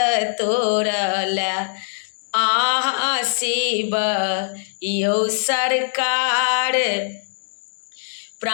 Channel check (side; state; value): right; silent; digital silence